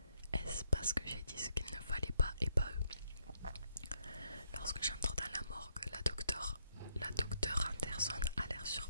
Est-ce parce que j'ai dit ce qu'il ne fallait pas et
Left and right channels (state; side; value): inverted; both; correlation -0.73